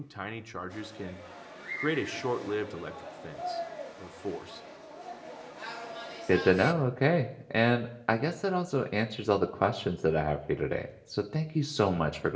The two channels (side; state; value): both; identical; correlation 1.00